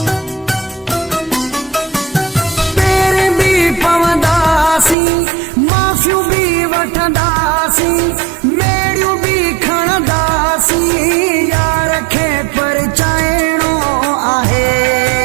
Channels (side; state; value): left; drops out; at 5.0 s